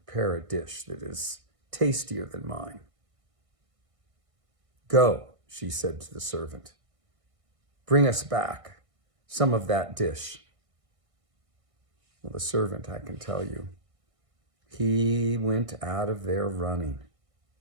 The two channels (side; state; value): left; late; 1.6 ms